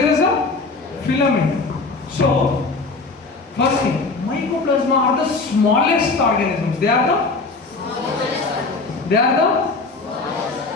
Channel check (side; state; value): right; quieter; 3.8 dB